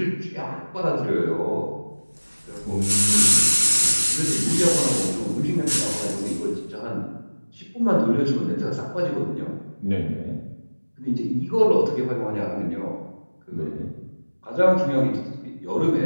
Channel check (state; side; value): inverted; both; correlation -1.00